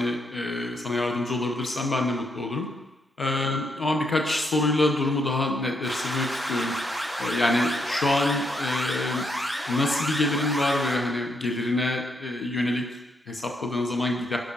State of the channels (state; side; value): normal; both; correlation 0.77